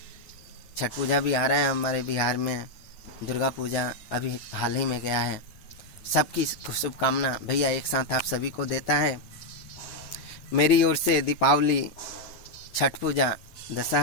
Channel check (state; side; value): late; right; 9.8 ms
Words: छठ पूजा भी आ रहा है हमारे बिहार में, दुर्गा पूजा अभी हाल ही में गया है। सबकी शुभकामना भैया एक साथ आप सभी को देता है। मेरी ओर से दीपावली, छठ पूजा,